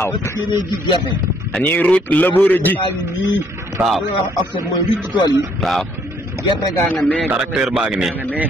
parce que yéenay ji gerte. dañuy ruuj labouré ji. nii. waaw. li wax offset mooy ruuj ci tool yi. waaw. gerte gaa nga nee. tracteur baa ngi nii.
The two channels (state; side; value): normal; both; correlation 0.66